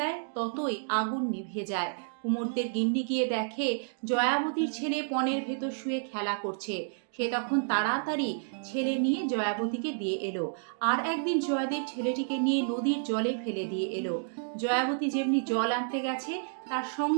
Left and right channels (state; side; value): silent; left; digital silence